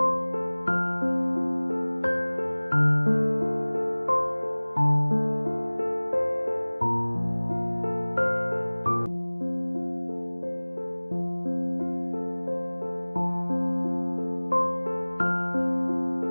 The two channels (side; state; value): both; inverted; correlation -1.00